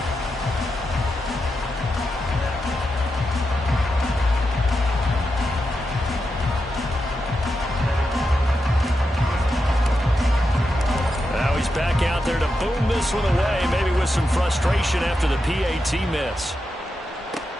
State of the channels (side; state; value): both; normal; correlation 0.87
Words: Back out there to boom this one away, maybe with some frustration after the PAT miss.